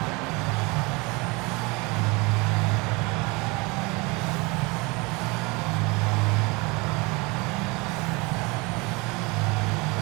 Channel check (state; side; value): quieter; left; 26.4 dB